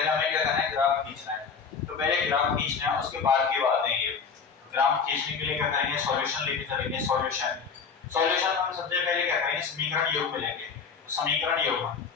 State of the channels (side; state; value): right; quieter; 5.8 dB